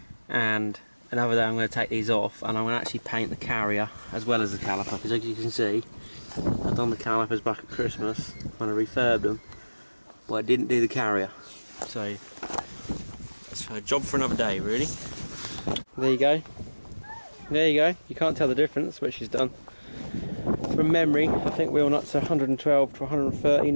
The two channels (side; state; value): both; inverted; correlation -1.00